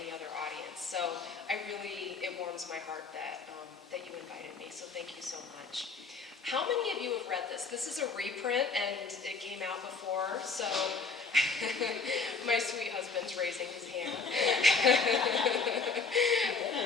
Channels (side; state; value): right; quieter; 4.5 dB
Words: other audience. So it warms my heart that, that you invited me, so thank you so much. How many of you have read this? This is a reprint and it came out before, so my sweet husband's raising his hand.